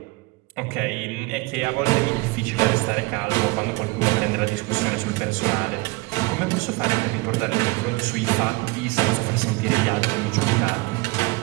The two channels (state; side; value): quieter; left; 23.9 dB